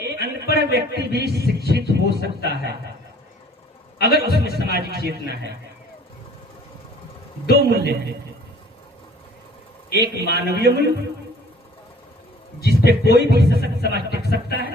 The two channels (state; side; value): normal; both; correlation 0.53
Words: अनपढ़ व्यक्ति भी शिक्षित हो सकता है अगर उसमें सामाजिक चेतना है। दो मूल्य हैं, एक मानवीय मूल्य जिसपे कोई भी सशक्त समाज टिक सकता